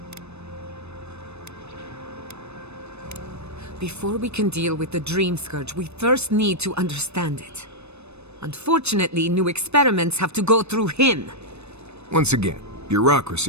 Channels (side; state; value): left; late; 0.80 ms